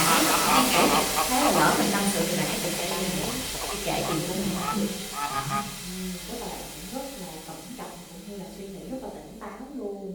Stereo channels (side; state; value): both; identical; correlation 1.00